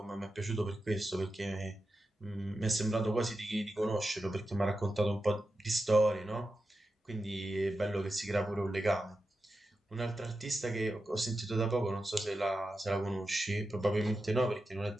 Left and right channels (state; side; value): normal; both; correlation 0.90